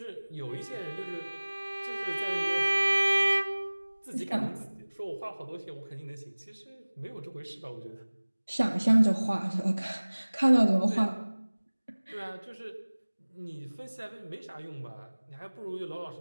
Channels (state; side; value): inverted; both; correlation -1.00